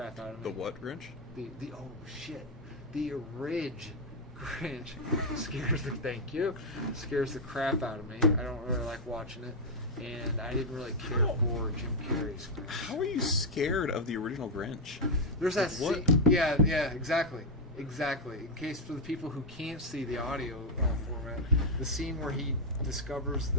out of me. The what, Grinch? The oh shit. The Ridge Grinch scares the crap out of me. I don't really like watching it, and I didn't really care for Jim Carrey's Grinch. How are you scared of the original Grinch? There's that What? scene. Yeah, exactly. In case for the people who can't see the audio format, the scene where he discovers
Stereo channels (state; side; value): normal; both; correlation 0.00